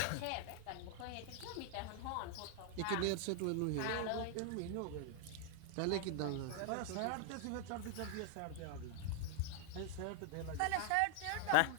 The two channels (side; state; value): both; different; correlation 0.00